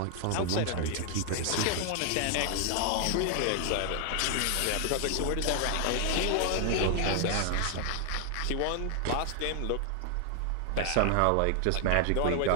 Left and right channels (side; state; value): both; different; correlation 0.00